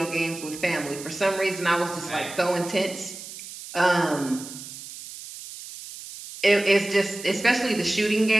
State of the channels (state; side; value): noise; right; hiss, 13 dB below the sound